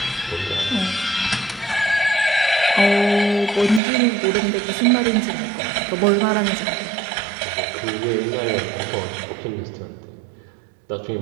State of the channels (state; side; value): drops out; left; at 3.8 s